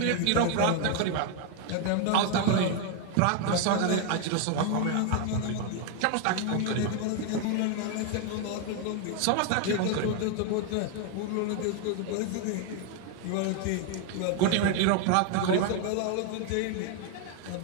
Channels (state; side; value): different; both; correlation 0.01